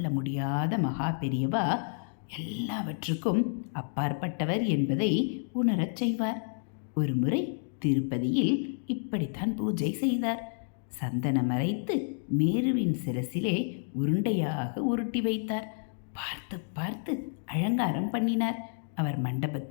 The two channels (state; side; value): silent; right; digital silence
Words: முடியாத மகா பெரியவா எல்லாவற்றுக்கும் அப்பாற்பட்டவர் என்பதை உணரச் செய்வார். ஒரு முறை திருப்பதியில் இப்படித்தான் பூஜை செய்தார். சந்தனம் மறைத்து மேருவின் சிரசிலே உருண்டையாக உருட்டி வைத்தார். பார்த்து பார்த்து அலங்காரம் பண்ணினார். அவர்